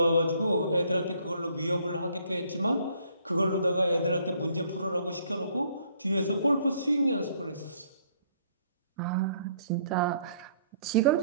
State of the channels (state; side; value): inverted; both; correlation -0.64